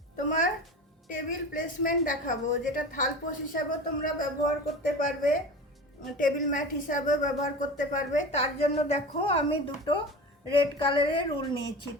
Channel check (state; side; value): normal; both; correlation 0.32